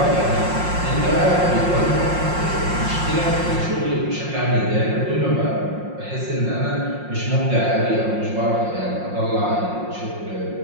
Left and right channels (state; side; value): late; left; 5.6 ms